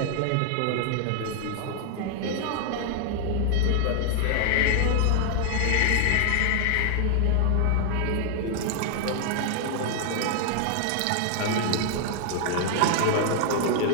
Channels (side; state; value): both; different; correlation 0.00